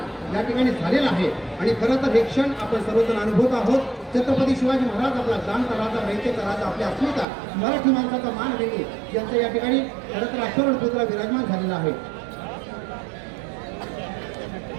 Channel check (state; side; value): drops out; left; at 7.2 s